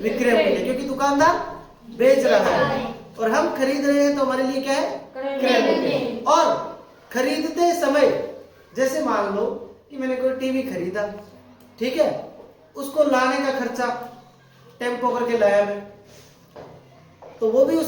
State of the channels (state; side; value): identical; both; correlation 1.00